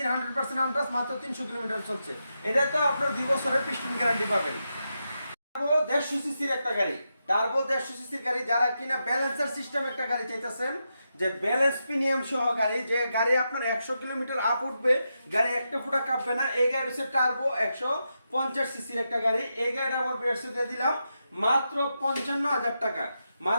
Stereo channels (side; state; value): both; inverted; correlation -0.86